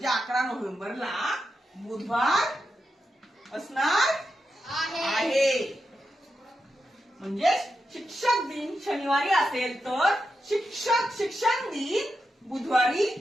11 नोव्हेंबरला बुधवार असणार आहे. म्हणजे शिक्षक दिन शनिवारी असेल तर शिक्षण दिन बुधवारी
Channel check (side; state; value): both; normal; correlation 0.87